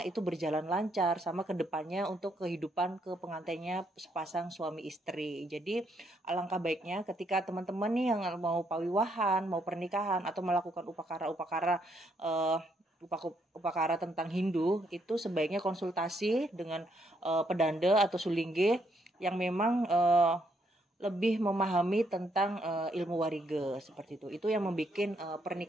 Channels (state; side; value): normal; both; correlation 0.74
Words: itu berjalan lancar sama kedepannya untuk kehidupan ke pengantinnya sepasang suami istri. Jadi alangkah baiknya ketika teman-teman nih yang mau pawiwahan, mau pernikahan atau melakukan upakara tentang Hindu, itu sebaiknya konsultasi dengan pedanda atau sulingge yang memang lebih memahami tentang ilmu wariga seperti itu. Itu yang membuat